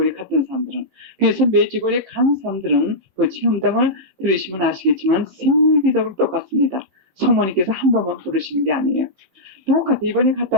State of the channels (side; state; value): left; late; 16 ms